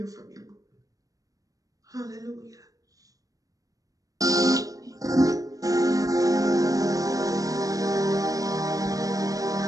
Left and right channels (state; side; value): late; left; 0.17 ms